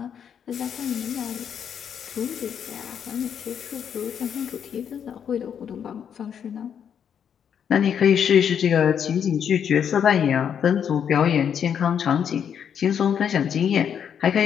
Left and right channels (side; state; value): right; quieter; 8.1 dB